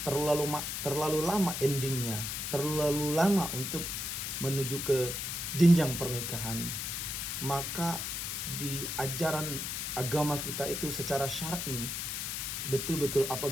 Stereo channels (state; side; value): noise; left; hiss, 3 dB below the sound